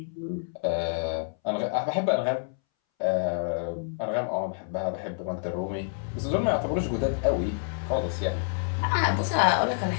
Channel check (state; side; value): silent; right; 60 dB below the other